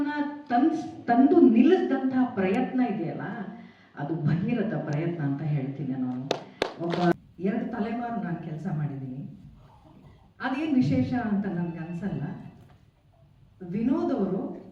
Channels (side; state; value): both; identical; correlation 1.00